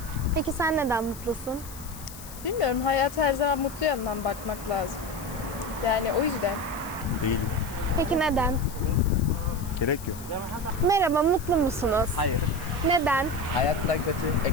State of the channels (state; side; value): noise; left; hiss, 16 dB below the sound